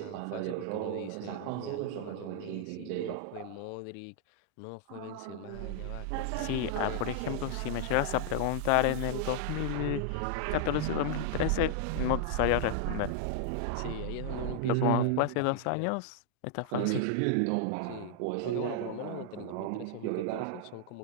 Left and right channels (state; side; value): different; both; correlation -0.01